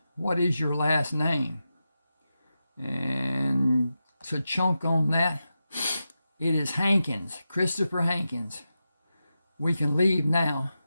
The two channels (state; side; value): inverted; both; correlation -0.90